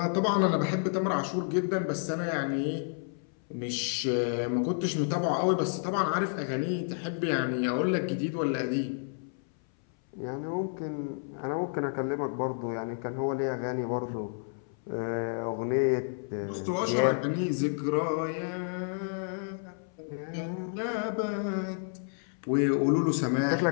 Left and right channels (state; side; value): silent; right; 58 dB below the other